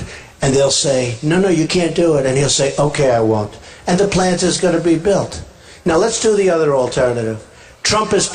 And they'll say, no, you can't do it. And he'll say, okay, I won't. And the plant is going to be built. Now let's do the other alternative. Trump is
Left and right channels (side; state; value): both; identical; correlation 1.00